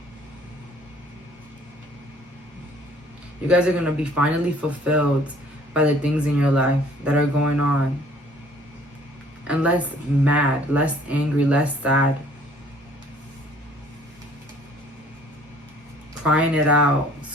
You guys are going to be finally fulfilled by the things in your life that are going on. and less mad, less angry, less sad. Crying it out,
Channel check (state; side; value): normal; both; correlation 0.57